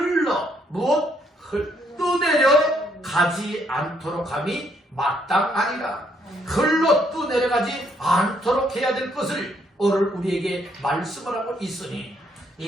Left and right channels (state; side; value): normal; both; correlation 0.71